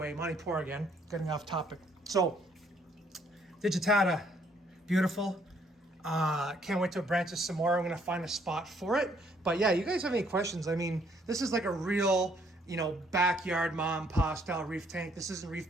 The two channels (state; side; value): normal; both; correlation 0.66